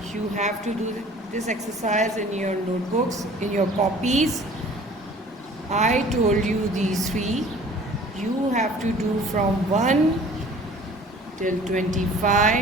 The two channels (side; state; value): both; normal; correlation 0.49